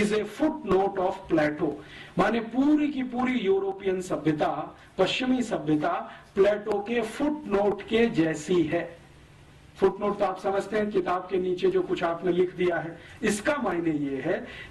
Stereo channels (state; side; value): identical; both; correlation 1.00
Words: a footnote of Plato. माने पूरी की पूरी यूरोपियन सभ्यता, पश्चिमी सभ्यता प्लेटो के फुट नोट के जैसी है। फुटनोट तो आप समझते हैं, किताब के नीचे जो कुछ आपने लिख दिया है। इसका मायने ये है